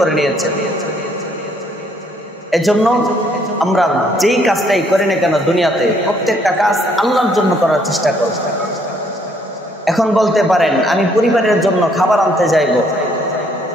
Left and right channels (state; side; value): normal; both; correlation 0.66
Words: নিয়েছেন। এজন্য আমরা যেই কাজটাই করি না কেন দুনিয়াতে, প্রত্যেকটা কাজ আল্লাহর জন্য করার চেষ্টা করব। এখন বলতে পারেন আমি পরিবারের জন্য খাবার আনতে যাইব